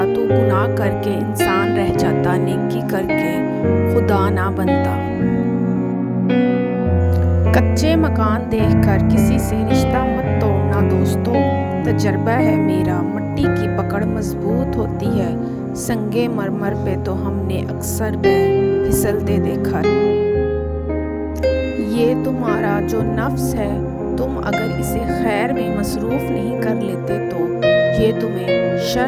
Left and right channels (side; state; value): both; identical; correlation 1.00